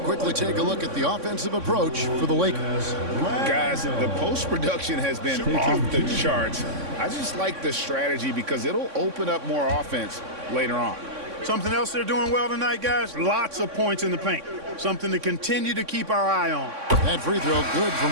take a look at the offensive approach for the Lakers. Guys, the post-production has been off the charts. I just like the strategy because it'll open up more offense later on. Something else they're doing well tonight, guys, lots of points in the paint. Something to continue to keep our eye on. That free throw good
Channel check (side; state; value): left; late; 3.6 ms